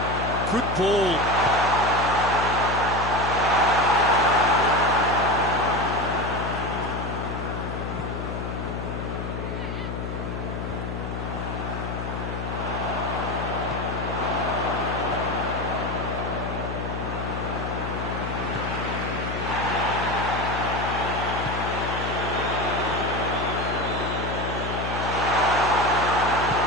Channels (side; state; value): left; noise; hum, 5 dB below the sound